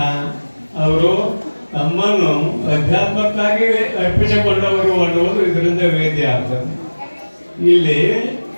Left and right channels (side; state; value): both; inverted; correlation -1.00